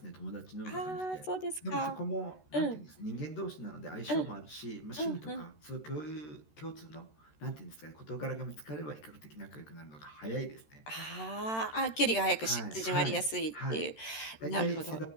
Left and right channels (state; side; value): late; right; 13 ms